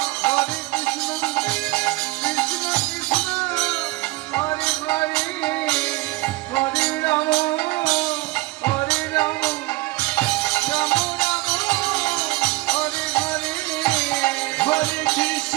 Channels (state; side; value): quieter; left; 21.4 dB